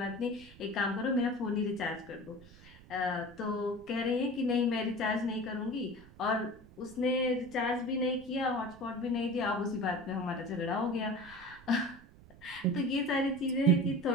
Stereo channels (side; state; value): right; noise; rumble, 21 dB below the sound